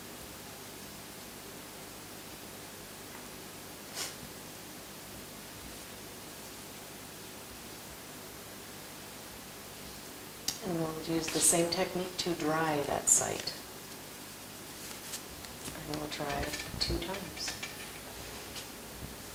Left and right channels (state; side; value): identical; both; correlation 1.00